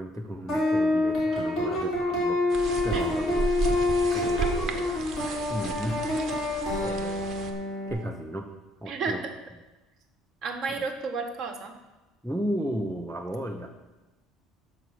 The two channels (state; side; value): normal; both; correlation 0.69